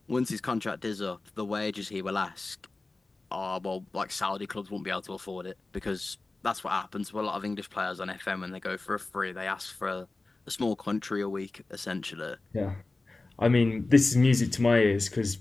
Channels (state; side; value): quieter; right; 3.3 dB